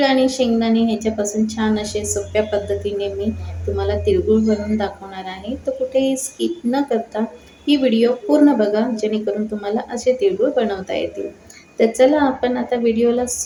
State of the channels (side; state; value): both; identical; correlation 1.00